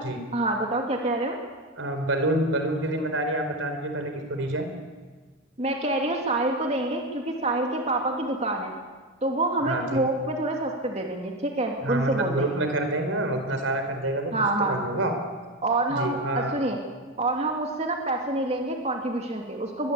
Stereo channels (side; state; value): both; normal; correlation 0.16